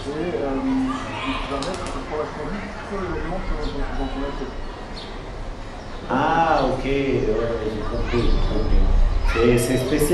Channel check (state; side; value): identical; both; correlation 1.00